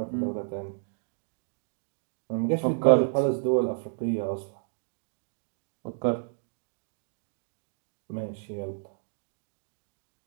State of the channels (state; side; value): silent; left; digital silence